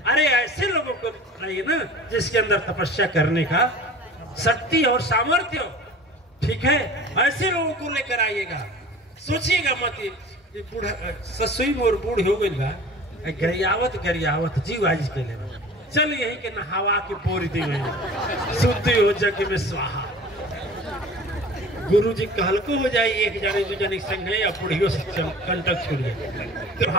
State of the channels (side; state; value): both; normal; correlation 0.42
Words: अरे ऐसे लोगों को लाइए ना जिसके अंदर तपस्या करने का शक्ति और सामर्थ्य हो, ठीक है, ऐसे लोगों को लेकर आइएगा। सोचिएगा मत ये बूढ़ा ससुई मोर बूढ़ हो गई बा, गरियावत जीव आज के लिए चल यही के नहावा के बोरी दी शुद्धि हो जग में स्वाहा। गुरु जी कहल को हो जाए, एक जाने 2 जने संग है या बुढ़ियों से कंटक छोड़िए, तो